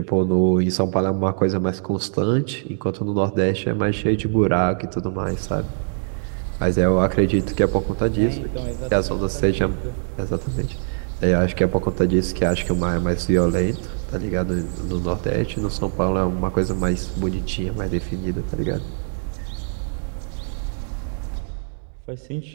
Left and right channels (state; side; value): silent; left; digital silence